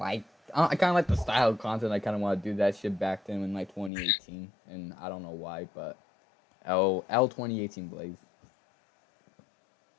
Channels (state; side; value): drops out; right; at 3.9 s